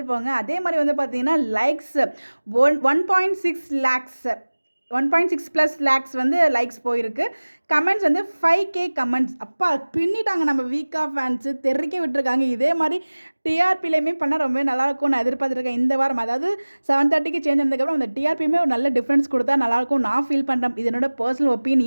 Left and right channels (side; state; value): both; inverted; correlation -1.00